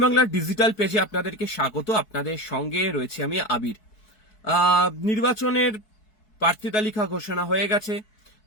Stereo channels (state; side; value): late; right; 4.6 ms